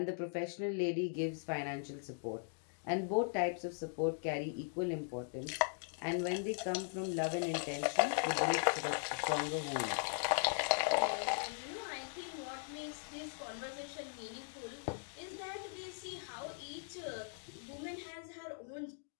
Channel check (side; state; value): right; silent; digital silence